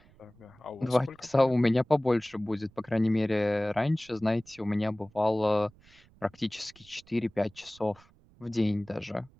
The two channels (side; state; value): right; noise; rumble, 28 dB below the sound